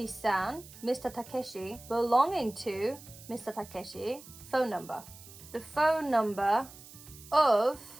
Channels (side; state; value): right; noise; hiss, 18 dB below the sound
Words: Mr. Takeshi, belonging to Mr. Takeshi, phone number. The phone number of